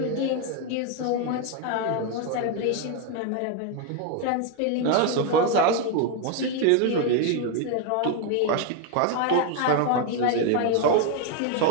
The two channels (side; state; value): both; different; correlation 0.01